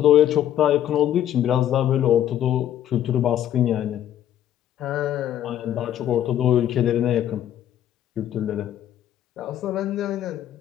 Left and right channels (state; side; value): quieter; right; 11.3 dB